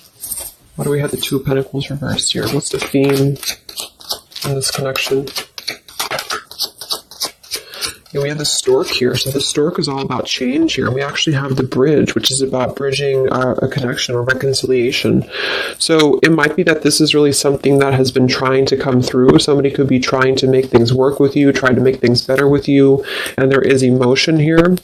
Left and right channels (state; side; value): identical; both; correlation 1.00